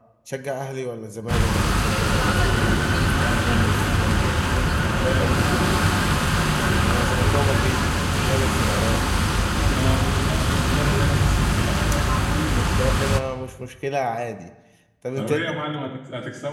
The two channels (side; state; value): both; identical; correlation 1.00